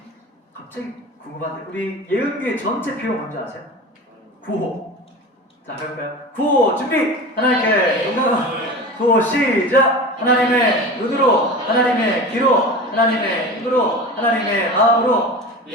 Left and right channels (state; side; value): late; left; 4.0 ms